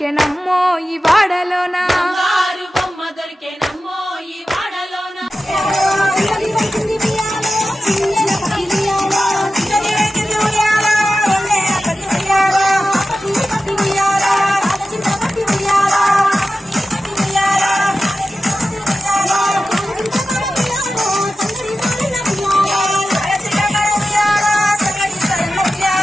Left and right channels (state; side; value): normal; both; correlation 0.93